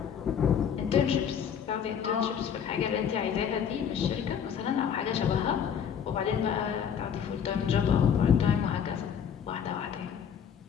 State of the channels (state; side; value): quieter; right; 7.9 dB